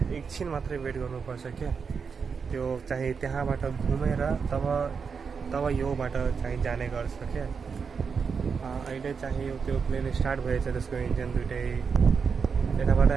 एकछिन मात्रै वेट गर्नुपर्छ क्या। त्यो चाहिँ त्यहाँबाट घुमेर तब योबाट चाहिँ जाने गर्छ क्या। अहिले चाहिँ त्यो प्लेन स्टार्ट भएछ, त्यसको इन्जिन दुइटै यताबाट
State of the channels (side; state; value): left; quieter; 5.8 dB